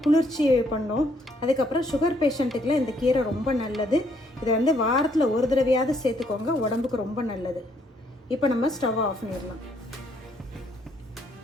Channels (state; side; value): normal; both; correlation 0.70